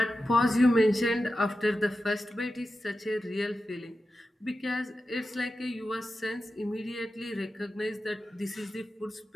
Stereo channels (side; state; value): both; normal; correlation 0.92